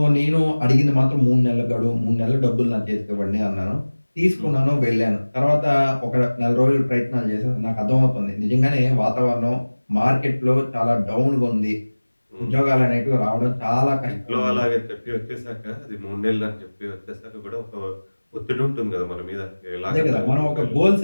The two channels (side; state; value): both; inverted; correlation -1.00